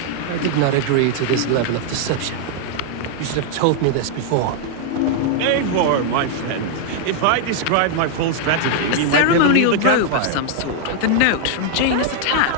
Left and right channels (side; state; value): both; different; correlation 0.00